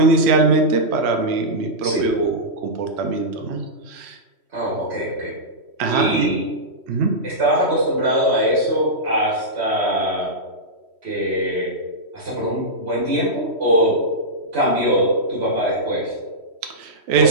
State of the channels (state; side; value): late; left; 3.1 ms